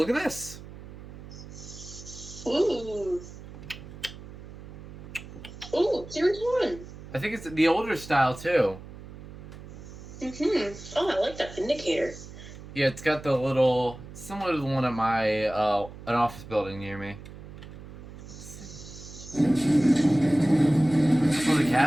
at this! Ooh. Ooh, Series 1. I think it's the older style, too. Mm-hmm. Oh, I like that Vindicator. Yeah, it's got the little... similar to the one at my... an office building near me. Oh, the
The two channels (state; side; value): noise; right; hum, 14 dB below the sound